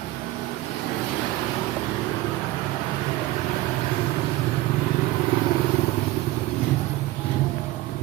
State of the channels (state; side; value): quieter; left; 17.2 dB